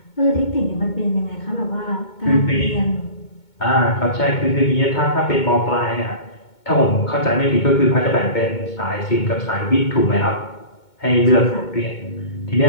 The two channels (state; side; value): late; right; 2.2 ms